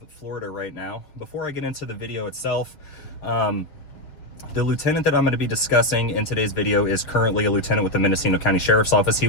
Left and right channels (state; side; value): late; right; 6.6 ms